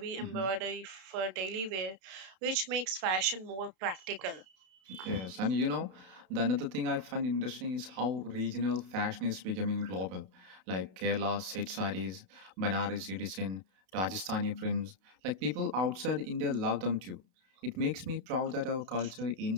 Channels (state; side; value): late; left; 32 ms